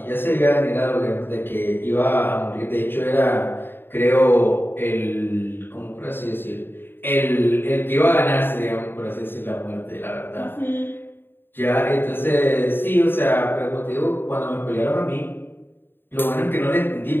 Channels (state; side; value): late; right; 0.10 ms